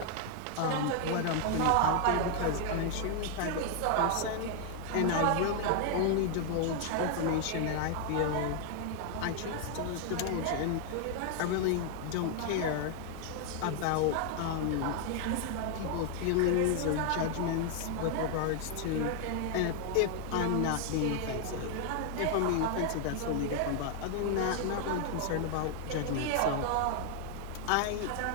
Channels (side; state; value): both; different; correlation 0.00